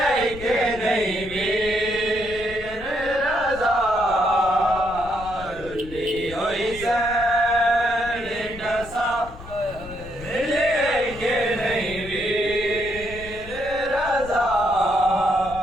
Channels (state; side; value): noise; left; rumble, 15 dB below the sound